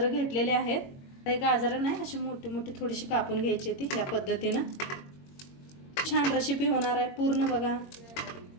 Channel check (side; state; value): right; late; 22 ms